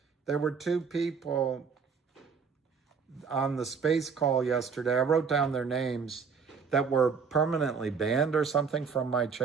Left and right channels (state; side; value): quieter; left; 5.7 dB